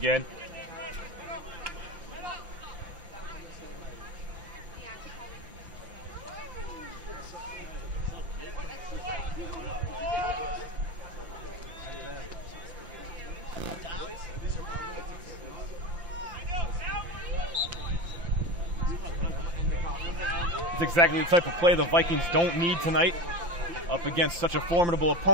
It's exactly the type of play the Vikings don't need tonight up against such a formidable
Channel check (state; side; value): late; left; 5.8 ms